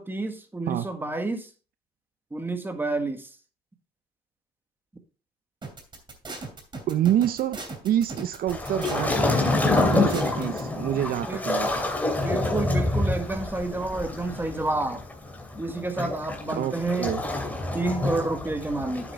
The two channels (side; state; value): both; normal; correlation 0.65